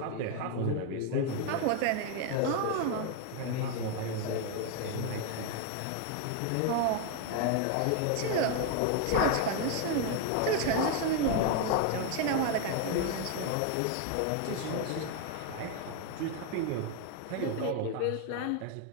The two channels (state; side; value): different; both; correlation 0.01